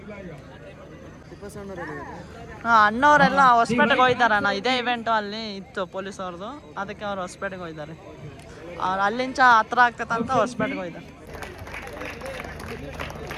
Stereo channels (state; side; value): identical; both; correlation 1.00